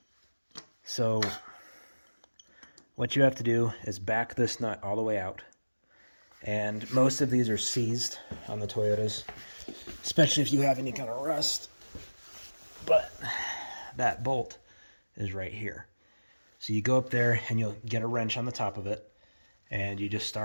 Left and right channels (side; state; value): both; inverted; correlation -1.00